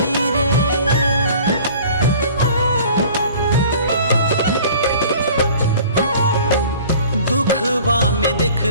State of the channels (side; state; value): both; inverted; correlation -0.47